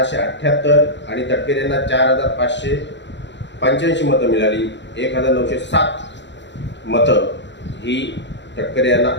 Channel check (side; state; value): right; late; 0.52 ms